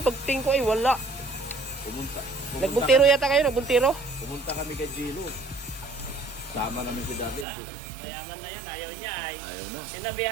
pagting ko ay wala. Pumunta. Nagbuntiro yata kayo, nagbuntiro? Pumunta kami kay Dilo. Sama namin si David. Mayaman na yun, ayaw niya ay. Ayaw na.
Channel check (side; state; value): left; drops out; at 7.5 s